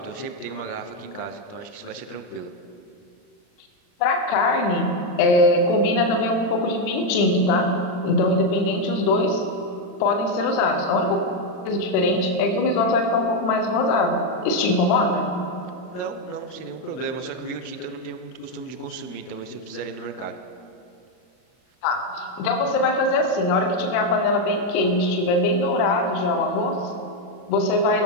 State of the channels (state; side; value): late; right; 39 ms